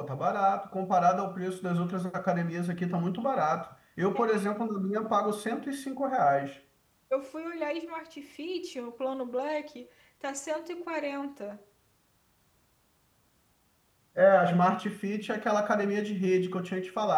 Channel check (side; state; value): both; identical; correlation 1.00